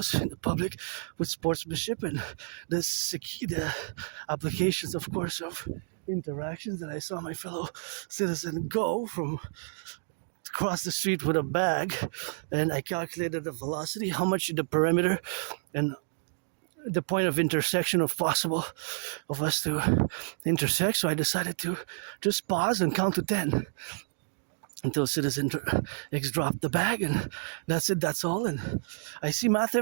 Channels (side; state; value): left; silent; digital silence